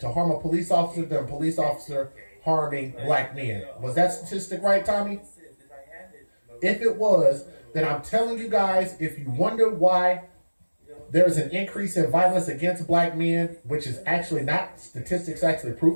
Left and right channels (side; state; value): both; inverted; correlation -1.00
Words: harm a police officer than a police officer harming black men. Was that statistic right, Tommy? If it was, then I'm telling you guys, if you wonder why there's an increase in violence against black men, which is actually not statistics, actually